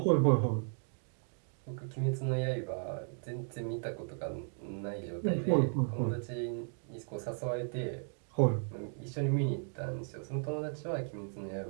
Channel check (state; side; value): silent; left; 54 dB below the other